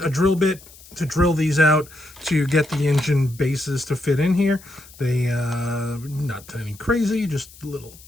a drill bit to drill these out to get the engine bases to fit in here. They not any crazy, just little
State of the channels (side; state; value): left; noise; hiss, 22 dB below the sound